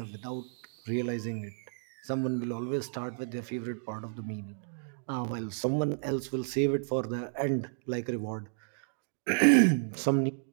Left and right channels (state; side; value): silent; left; digital silence